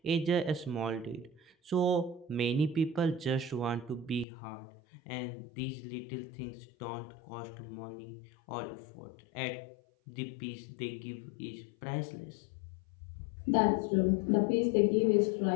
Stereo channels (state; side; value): drops out; right; at 4.2 s